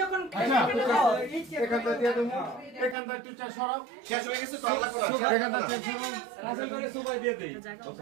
যখন এখানটা দিয়ে দেবো এখানটা টিচার সরাও শেষ হয়ে গেছে তো আল্লাহ করে এখানটা টিচার সরাও রাসেল করে সুবাই দিয়ে দেই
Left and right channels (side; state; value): left; drops out; at 3.0 s